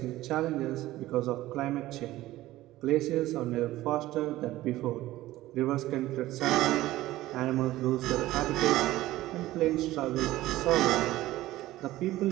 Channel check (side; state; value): left; quieter; 16.2 dB